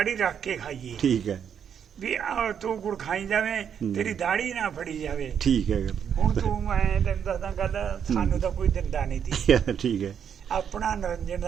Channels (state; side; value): quieter; left; 8.1 dB